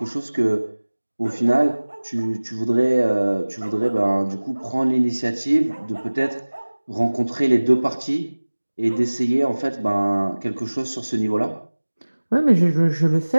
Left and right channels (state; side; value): inverted; both; correlation -1.00